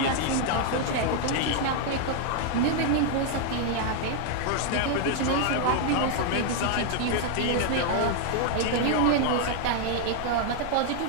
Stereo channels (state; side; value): different; both; correlation 0.00